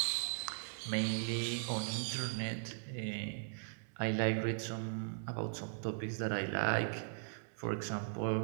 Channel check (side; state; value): left; silent; digital silence